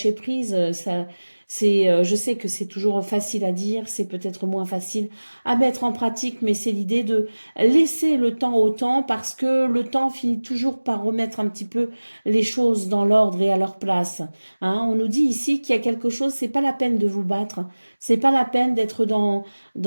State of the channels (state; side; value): inverted; both; correlation -1.00